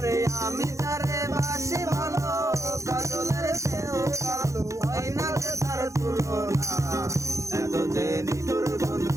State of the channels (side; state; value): left; late; 0.15 ms